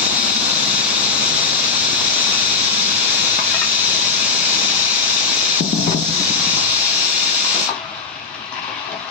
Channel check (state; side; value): quieter; right; 4.6 dB